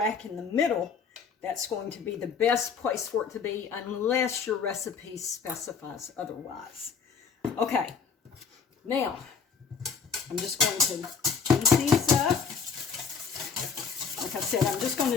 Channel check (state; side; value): quieter; right; 6.0 dB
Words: in the middle, that's going to be the best place for it to be, unless your recipe specifies otherwise. Okay, now I'm just going to heat these up. Like I said, I'm just going to